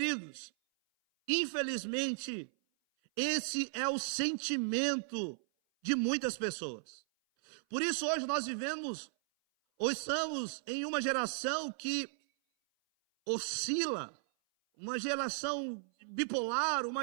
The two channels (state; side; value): silent; left; 54 dB below the other